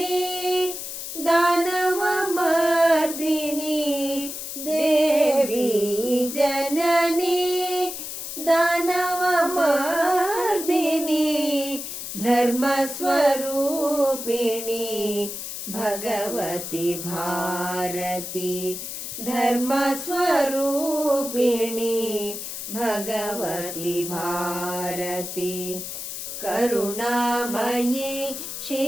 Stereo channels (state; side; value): noise; left; hiss, 7 dB below the sound